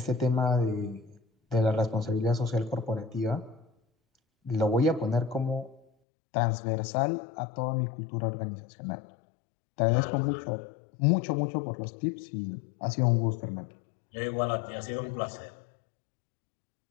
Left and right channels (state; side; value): drops out; right; at 5.9 s